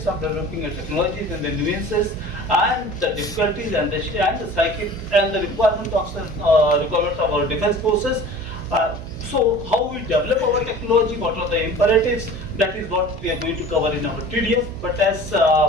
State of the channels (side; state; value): right; noise; hum, 12 dB below the sound